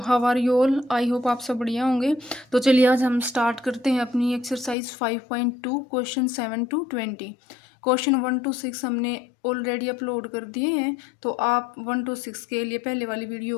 how are you all. I hope आप सब बढ़िया होंगे। तो चलिए आज हम स्टार्ट करते हैं अपनी exercise 5.2 question 7 to 20। Question 1 to 6 हमने ऑलरेडी अपलोड कर दिए हैं, तो आप 1 to 6 के लिए पहले वाली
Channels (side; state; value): right; drops out; at 4.8 s